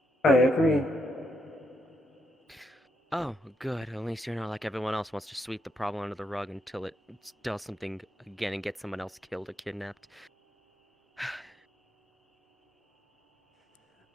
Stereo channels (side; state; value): both; normal; correlation 0.79